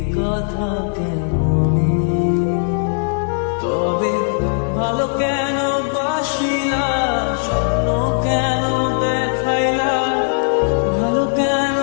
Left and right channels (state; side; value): silent; right; 67 dB below the other